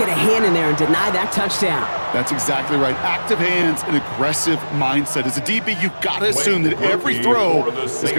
a hand in there and deny that touchdown. That's exactly right. Active hands and aggressive mindset. As a DB, you've got to assume that every throw is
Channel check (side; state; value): both; inverted; correlation -1.00